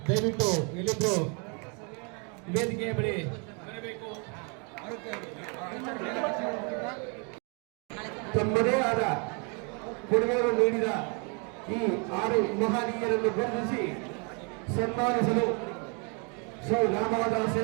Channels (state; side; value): quieter; left; 35.3 dB